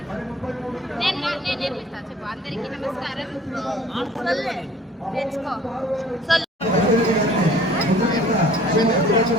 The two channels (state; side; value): normal; both; correlation 0.51